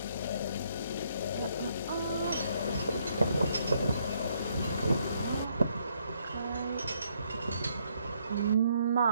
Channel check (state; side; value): inverted; both; correlation -0.71